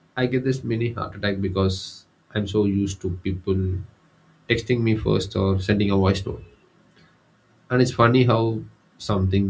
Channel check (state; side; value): identical; both; correlation 1.00